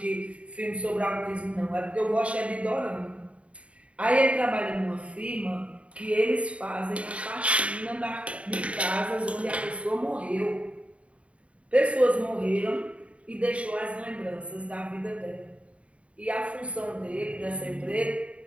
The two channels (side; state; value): left; late; 0.063 ms